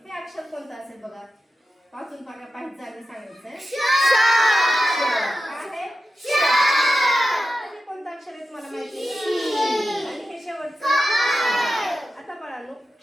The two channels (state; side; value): normal; both; correlation 0.92